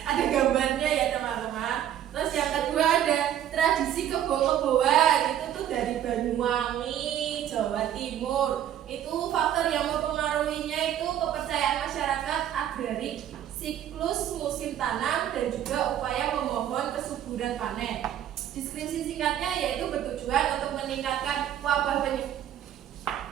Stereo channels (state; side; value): quieter; left; 10.9 dB